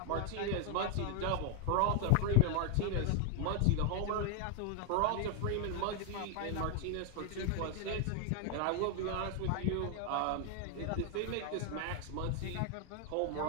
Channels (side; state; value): both; different; correlation 0.00